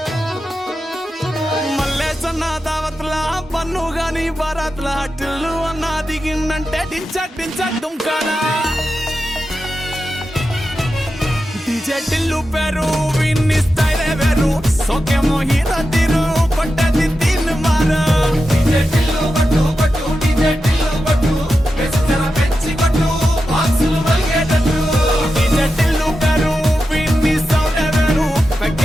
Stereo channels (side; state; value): both; normal; correlation 0.90